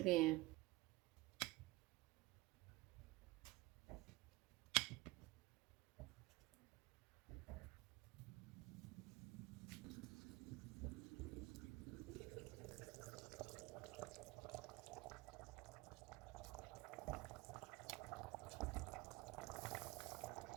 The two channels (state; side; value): quieter; left; 20.8 dB